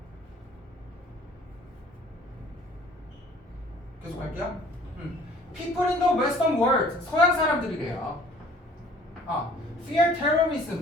계속 할게요. People in the Western world. 서양 사람들이래요. Fear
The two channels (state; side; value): normal; both; correlation 0.53